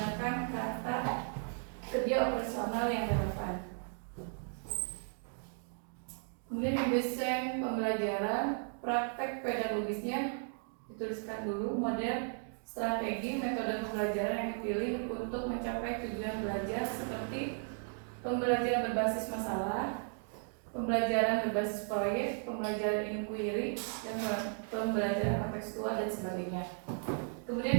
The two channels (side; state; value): left; silent; 54 dB below the other